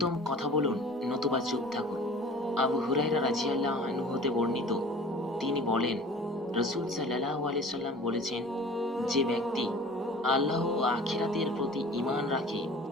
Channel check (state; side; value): normal; both; correlation 0.44